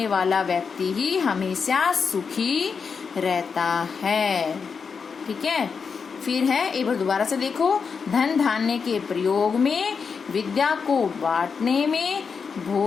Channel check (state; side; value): quieter; right; 5.7 dB